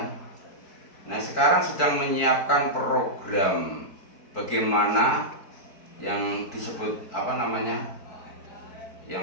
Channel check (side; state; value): right; late; 4.6 ms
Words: Nah sekarang sedang menyiapkan program bagaimana yang disebut apa namanya,